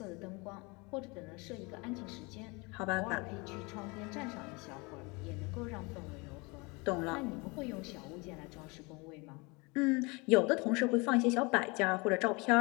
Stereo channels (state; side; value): quieter; right; 27.5 dB